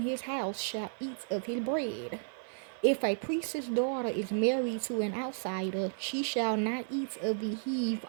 his house shall eat of his bread. If a priest's daughter is married to an outsider, she shall not eat of the heave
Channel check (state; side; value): silent; left; 56 dB below the other